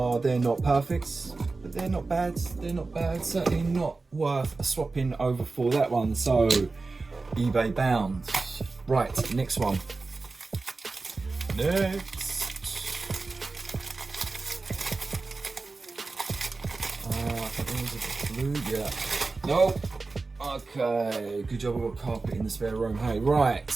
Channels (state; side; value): quieter; left; 3.8 dB